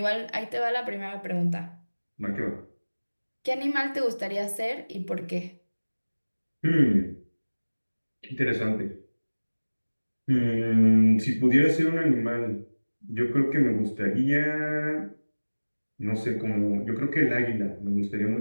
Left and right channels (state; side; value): inverted; both; correlation -1.00